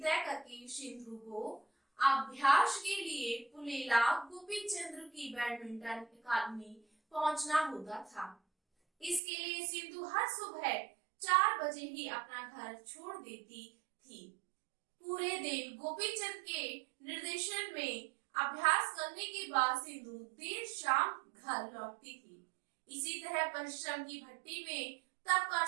तय करके सिंधु को अभ्यास के लिए पुलेला गोपीचंद्र की बैडमिंटन अकादमी पहुंचना होता था। इसके लिए सिंधु हर सुबह 4 बजे ही अपना घर छोड़ देती थी। पूरे दिन गोपीचंद के निर्देशन में अभ्यास करने के बाद सिंधु देर शाम घर लौटती थी। इसी तरह परिश्रम की भट्टी में तब का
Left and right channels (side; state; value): left; drops out; at 9.2 s